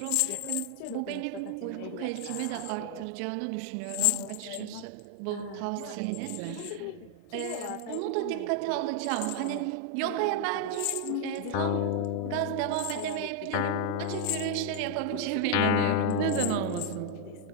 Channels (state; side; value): different; both; correlation 0.00